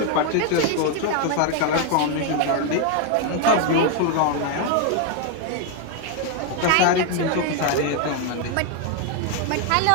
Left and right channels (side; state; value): both; different; correlation 0.01